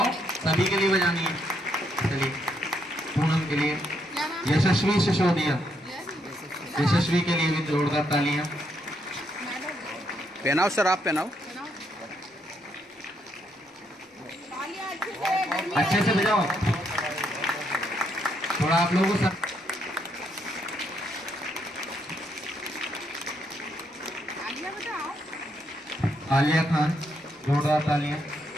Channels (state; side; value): normal; both; correlation 0.76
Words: सभी के लिए बजानी है। चलिए, पूनम के लिए। क्या नाम है? यशस्वी सिसोदिया। यशस्वी के लिए भी जोरदार तालियां। पहनाओ सर, आप पहनाओ। तालियां अच्छे से, गर्मी अच्छे से बजाओ, थोड़ा आप लोगों को सब। तालियां बजाओ। आलिया खान, जोरदार तालियां।